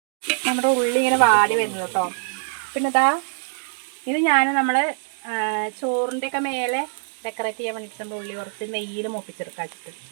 നമ്മുടെ ഉള്ളി ഇങ്ങനെ വാടി വരുന്നത് കേട്ടോ. പിന്നെ ഇതാ ഇത് നമ്മൾ ചോറിൻ്റെയൊക്കെ മേലെ ഡെക്കറേറ്റ് ചെയ്യാൻ വേണ്ടിയിട്ട് നമ്മൾ ഉള്ളി കുറച്ച് നെയ്യിൽ മൂപ്പിച്ചെടുക്കാൻ വെച്ചിട്ട്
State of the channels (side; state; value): left; silent; digital silence